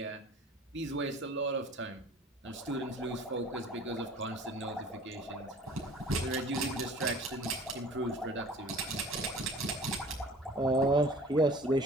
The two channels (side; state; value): both; normal; correlation 0.46